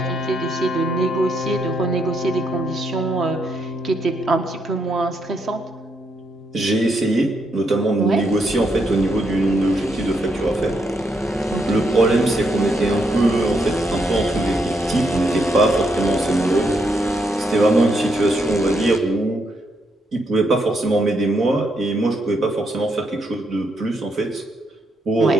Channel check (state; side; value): normal; both; correlation 0.78